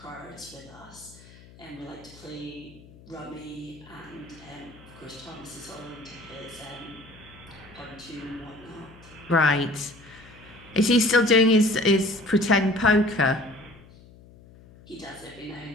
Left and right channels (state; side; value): noise; left; hum, 22 dB below the sound